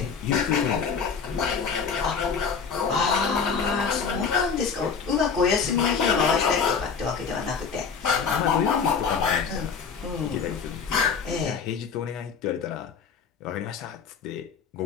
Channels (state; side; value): quieter; right; 5.9 dB